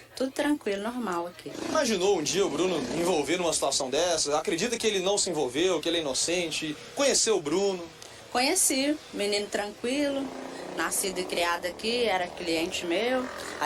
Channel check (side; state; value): both; identical; correlation 1.00